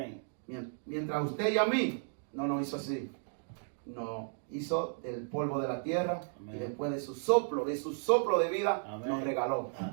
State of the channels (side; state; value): left; silent; digital silence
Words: Mientras usted y a mí no nos hizo así. No. hizo del polvo de la tierra. Amén. Y después de su soplo de vida, Amén. nos regaló.